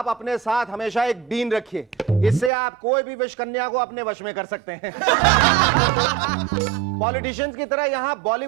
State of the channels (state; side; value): drops out; left; at 2.5 s